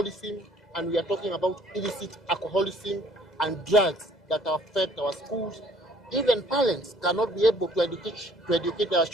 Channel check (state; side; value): normal; both; correlation 0.58